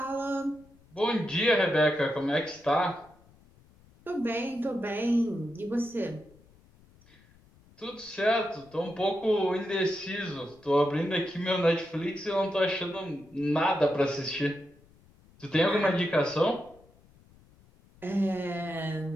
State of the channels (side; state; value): left; noise; rumble, 28 dB below the sound